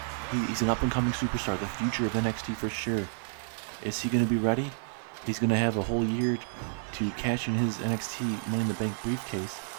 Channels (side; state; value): left; silent; digital silence